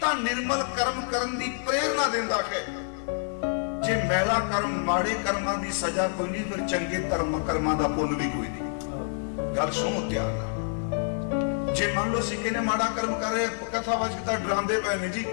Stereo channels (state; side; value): silent; right; 59 dB below the other